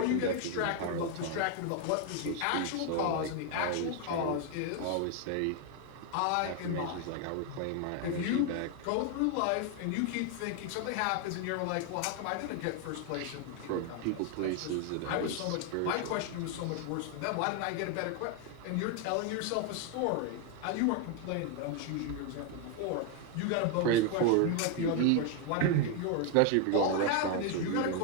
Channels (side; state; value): both; different; correlation 0.01